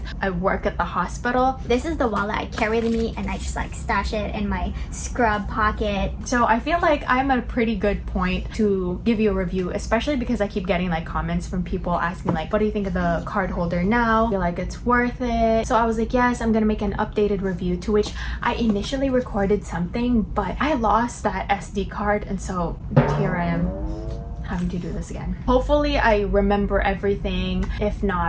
I work at the hospital. This is the wallet I carry with me and I just like stash it in my scrub pocket. So I feel like I'm at a pretty good point to give you a review, especially because I keep getting like comments from people asking like, what do you think of the card holder now? I feel like it's worth it. So I was like, yes, I'm gonna make an updated review, to which I initially recorded something, but I lost that SD card, and so here I am having to do this again. Hopefully I remember everything. If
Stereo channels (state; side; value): identical; both; correlation 1.00